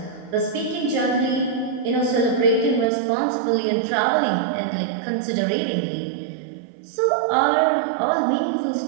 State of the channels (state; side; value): drops out; left; at 2.9 s